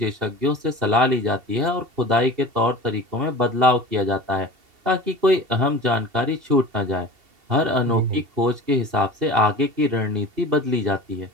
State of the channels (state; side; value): late; left; 2.7 ms